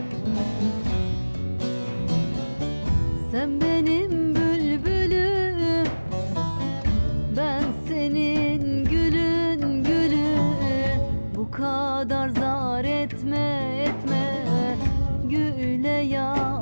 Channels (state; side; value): inverted; both; correlation -1.00